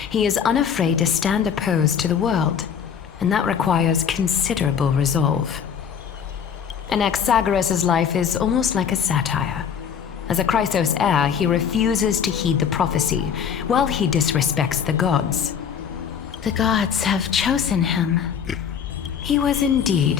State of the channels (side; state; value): right; quieter; 7.6 dB